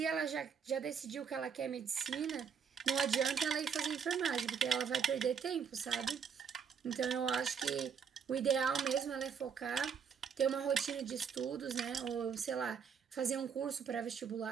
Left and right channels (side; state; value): left; quieter; 6.8 dB